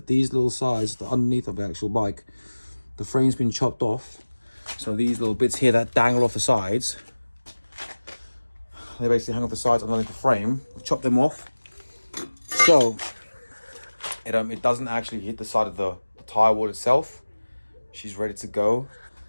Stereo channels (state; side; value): inverted; both; correlation -1.00